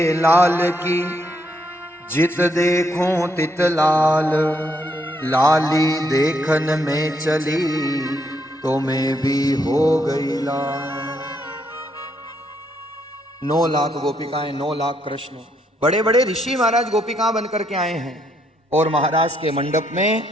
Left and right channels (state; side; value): normal; both; correlation 0.74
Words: लाल की जित देखूं तित लाल, लाली देखन में चली तो मैं भी हो गई लाल। 9 लाख गोपिकाएं, 9 लाख कृष्ण। बड़े बड़े ऋषि महाराज गोपिकाएं बनकर के आए हैं। और महाराज के मंडप में